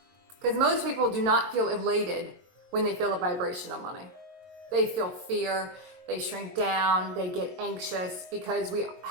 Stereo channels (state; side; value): late; left; 22 ms